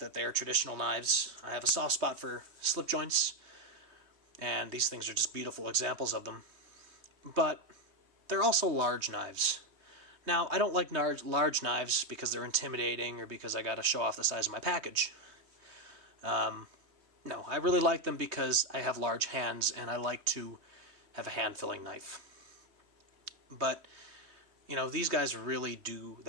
they are traditional knives. I have a soft spot for slip joints, and these things are just beautiful examples of them. But they're also large knives. Now, I don't like large knives because they're intimidating or because I gotta show off the size of my package. No, I really like them because I have large hands and I like to have a hand-filling knife. But, you know, these guys really do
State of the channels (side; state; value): left; late; 3.2 ms